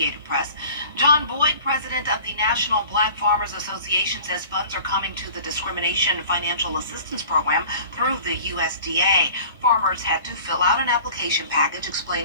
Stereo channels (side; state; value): both; inverted; correlation -0.44